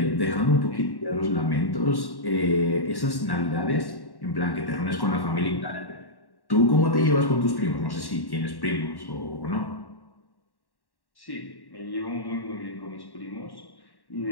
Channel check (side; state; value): right; late; 1.1 ms